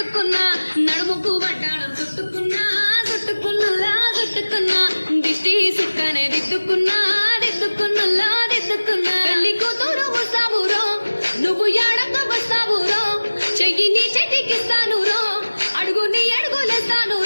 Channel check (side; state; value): both; inverted; correlation -1.00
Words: నడుముకు వడ్డాణం చుట్టుకున్నా చుట్టుకున్నులా చుట్టుకున్నా దిష్టి సుక్కనే దిద్దుకున్నా దిద్దుకున్నులా దిద్దుకున్నా పెళ్లి కూతురు వస్తావురో నువ్వు యాడంగా వస్తావురో చెయ్యి నీ చెట్టికిస్తాను రో అడుగు నీ అడుగులేస్తాను